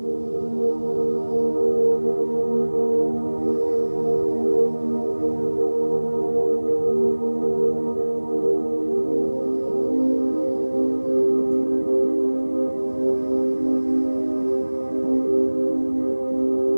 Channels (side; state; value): both; inverted; correlation -1.00